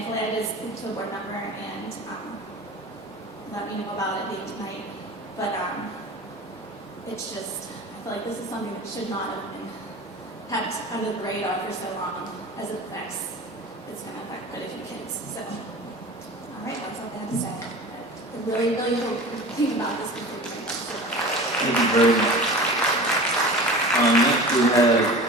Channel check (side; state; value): both; normal; correlation 0.36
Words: I did speak to a board member and let me know about it being tonight. But it's just, I feel like this is something that should not have been kept under the radar for so long as it affects it's going to affect quite a few kids. So, all right, that's all I have to say. I really, really hope you think about this before you make a decision. Thank you very much. Next we